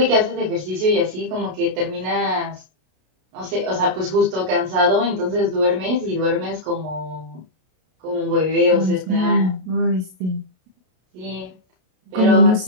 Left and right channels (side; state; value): left; late; 32 ms